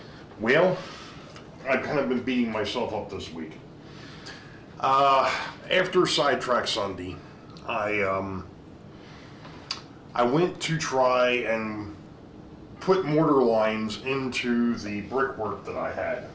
Well, I've kind of been beating myself up this week. After Sidetrack Sunday, I went to try and put mortar lines into the brickwork that I had,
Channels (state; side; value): identical; both; correlation 1.00